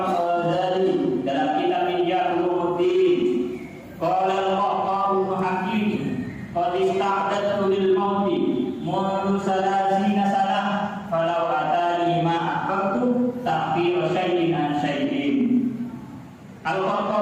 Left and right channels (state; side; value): identical; both; correlation 1.00